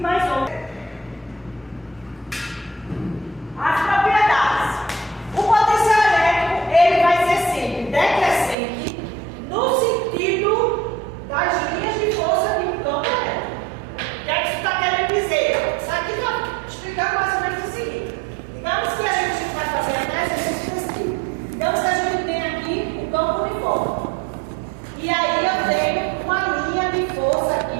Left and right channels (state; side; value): drops out; left; at 8.6 s